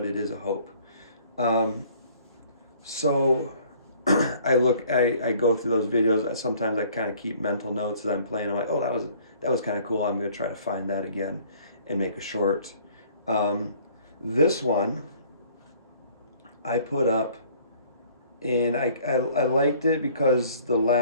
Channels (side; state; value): both; inverted; correlation -0.56